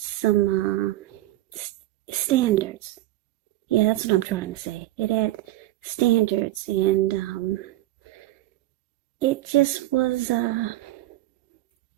standards. Yeah, that's what I'm trying to say. It had standards, and it just was,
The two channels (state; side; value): quieter; left; 16.0 dB